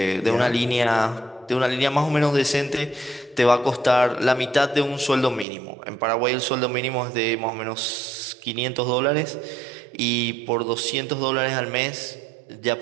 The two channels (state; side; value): drops out; left; at 5.5 s